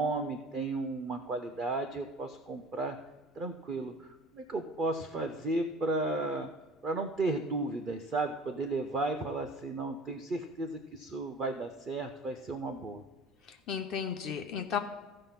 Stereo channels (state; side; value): normal; both; correlation 0.43